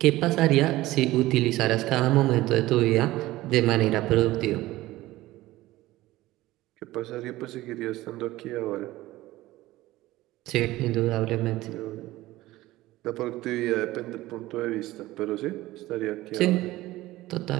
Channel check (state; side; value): quieter; left; 17.3 dB